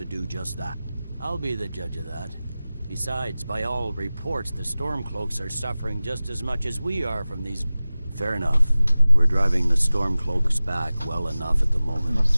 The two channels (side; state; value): both; inverted; correlation -0.97